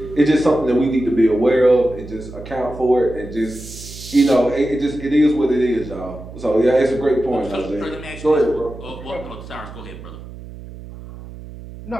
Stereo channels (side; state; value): right; noise; hum, 14 dB below the sound